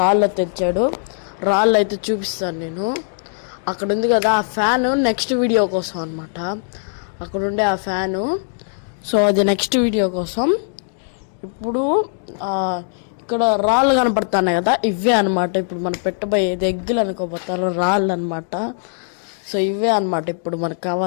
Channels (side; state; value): right; silent; digital silence